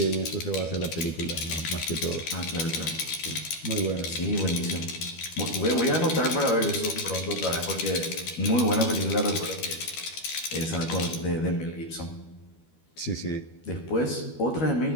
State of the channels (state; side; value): late; right; 12 ms